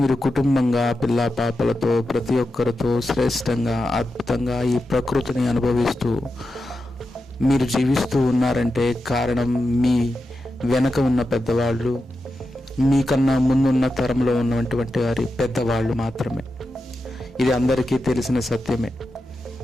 మీరు కుటుంబంగా పిల్ల పాపలతో ప్రతి ఒక్కరితో శ్రేష్టంగా అద్భుతంగా ఈ ప్రకృతిని అనుభవిస్తూ మీరు జీవిస్తూ ఉన్నారంటే కారణం మీ వెనక ఉన్న పెద్దవాళ్ళు, మీకన్నా ముందున్న తరంలో ఉన్నటువంటి వారి పెద్దవాళ్ళు మాత్రమే. ఇది అందరికీ తెలిసిన సత్యమే.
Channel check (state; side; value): normal; both; correlation 0.89